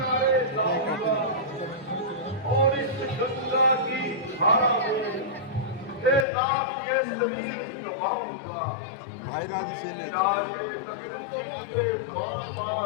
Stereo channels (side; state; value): right; drops out; at 6.2 s